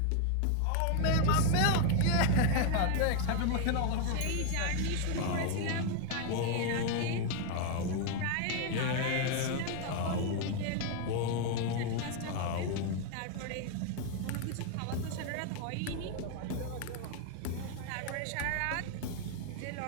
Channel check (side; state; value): both; different; correlation 0.00